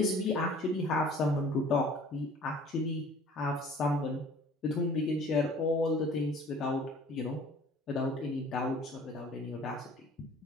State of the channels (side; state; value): both; normal; correlation 0.50